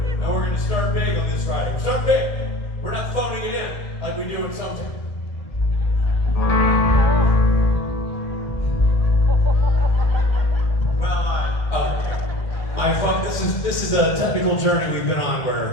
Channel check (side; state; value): right; late; 1.5 ms